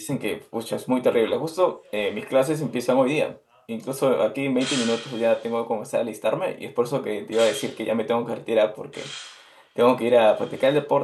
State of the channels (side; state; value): both; identical; correlation 1.00